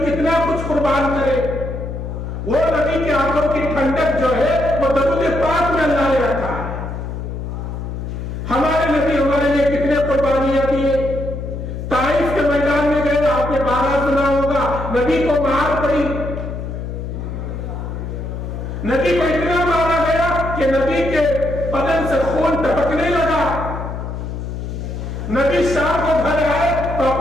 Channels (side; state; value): left; noise; hum, 6 dB below the sound